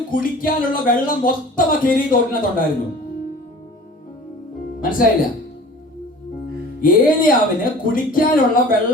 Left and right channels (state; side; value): normal; both; correlation 0.43